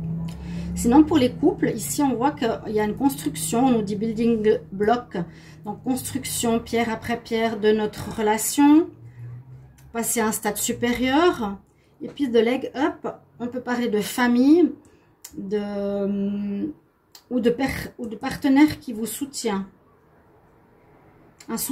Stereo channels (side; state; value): both; identical; correlation 1.00